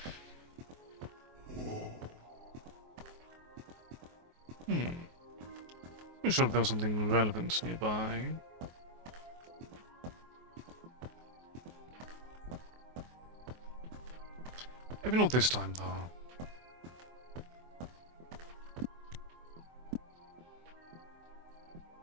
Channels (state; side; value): late; left; 24 ms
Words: I'm sure if there was something relevant nearby. Maybe not this time, though.